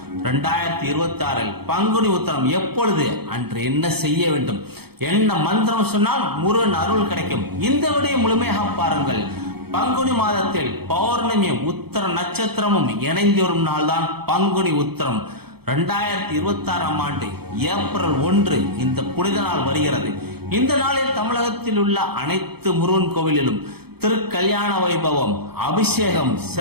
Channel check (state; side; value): late; left; 0.96 ms